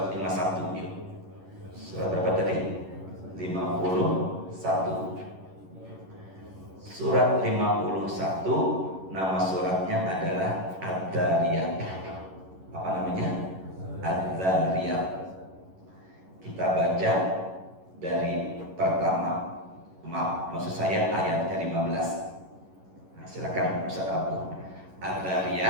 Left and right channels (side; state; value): left; late; 11 ms